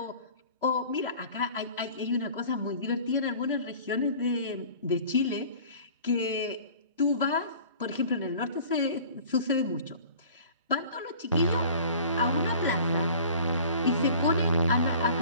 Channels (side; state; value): both; inverted; correlation -0.46